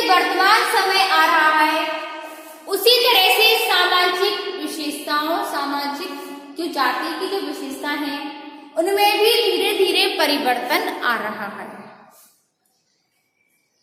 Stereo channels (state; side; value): identical; both; correlation 1.00